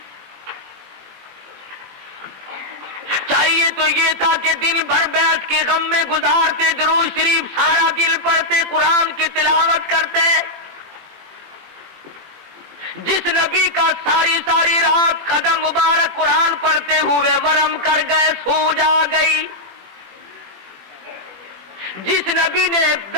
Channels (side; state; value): left; late; 20 ms